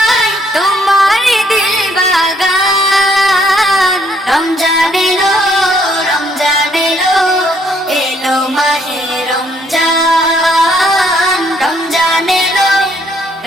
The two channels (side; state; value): both; normal; correlation 0.68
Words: তোমার দিল বাগান। রমজান এলো, রমজান এলো, এলো মাহে রমজান, রমজান এলো,